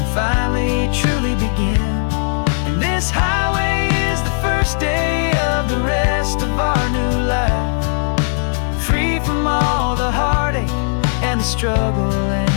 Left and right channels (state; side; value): silent; right; digital silence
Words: finally truly begin. And this highway is the first day of the rest of our new life, free from all the heartache and the struggle